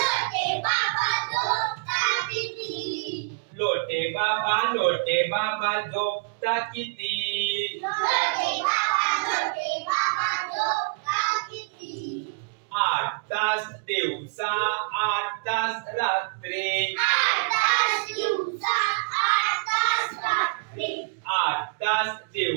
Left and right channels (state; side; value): quieter; left; 31.5 dB